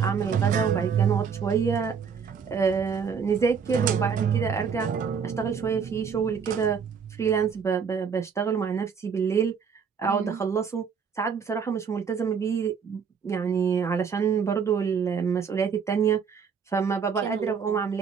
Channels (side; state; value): left; quieter; 6.5 dB